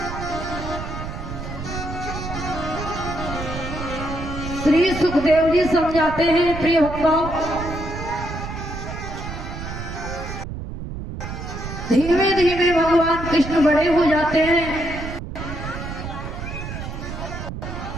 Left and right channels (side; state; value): right; noise; rumble, 7 dB below the sound